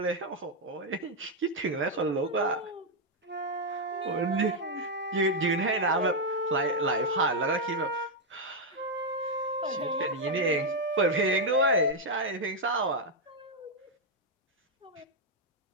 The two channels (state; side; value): normal; both; correlation 0.00